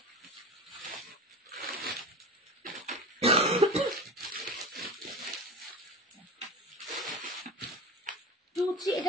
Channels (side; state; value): both; normal; correlation 0.30